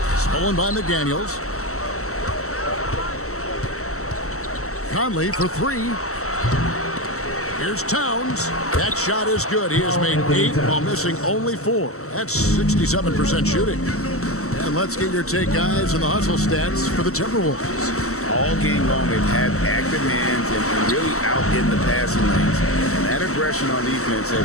Stolen by McDaniels. Conley for 3. Here's Towns. That shot is good. He has made 8 while missing only 4. That's 67% shooting. And let's get your take, guys, on the hustle stats for the Timberwolves. All game long, they've had active hands and really out in the passing lanes. And that aggression on defense has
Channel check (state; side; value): late; right; 0.64 ms